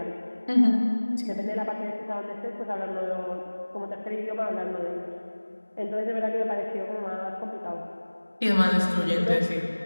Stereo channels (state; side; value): inverted; both; correlation -1.00